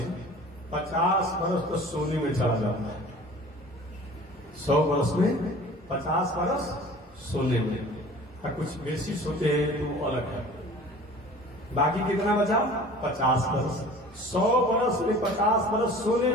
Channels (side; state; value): both; normal; correlation 0.44